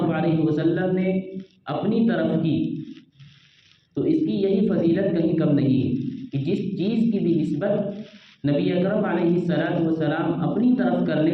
علیہ وسلم نے اپنی طرف کی، تو اس کی یہی فضیلت کہیں کم نہیں ہے کہ جس چیز کی بھی نسبت نبی اکرم علیہ السلام اپنی طرف کر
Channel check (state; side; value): identical; both; correlation 1.00